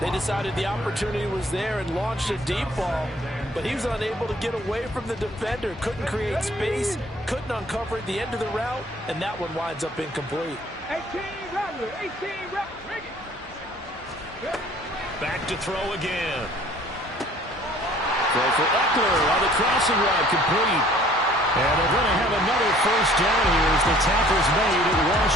They decided the opportunity was there and launched a deep ball, but he was unable to get away from the defender, couldn't create space, couldn't uncover the end of the route, and that one winds up incomplete. 18 Rattler, 18 Rattler. Back to throw again. Throw for Eckler on the crossing route, complete. And they're going to have another first down here as the tackle's made at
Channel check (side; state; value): both; normal; correlation 0.55